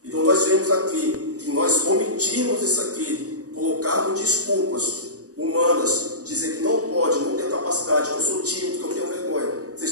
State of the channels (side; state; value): left; late; 0.67 ms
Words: Então nós vemos aqui que nós omitimos isso aqui, colocarmos desculpas humanas, dizer que não pode, não tem capacidade, que eu sou tímido, que eu tenho vergonha.